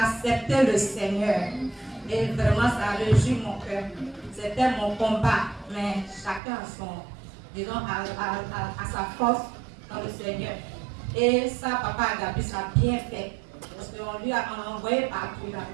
accepté le Seigneur. Et vraiment, ça a réjoui mon cœur. C'était mon combat, mais chacun a son, disons, à sa force dans le Seigneur. Et ça, Papa Agabus a bien fait. Parce qu'on lui a envoyé partout, il a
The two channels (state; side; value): drops out; left; at 6.4 s